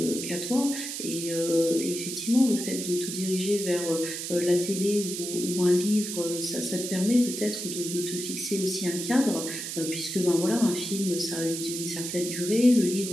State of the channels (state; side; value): noise; right; hiss, 6 dB below the sound